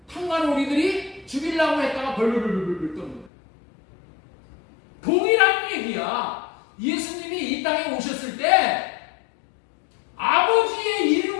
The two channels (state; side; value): drops out; right; at 3.3 s